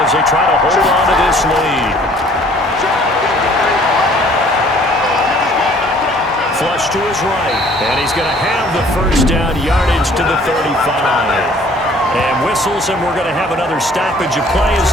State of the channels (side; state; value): both; normal; correlation 0.56